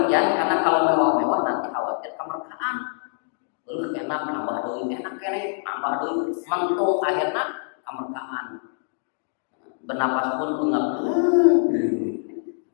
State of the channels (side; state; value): right; silent; 62 dB below the other